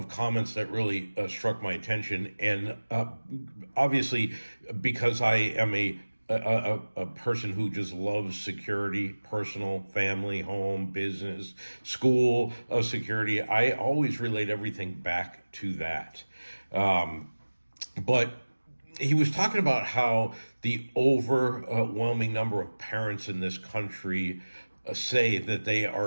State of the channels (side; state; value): both; inverted; correlation -1.00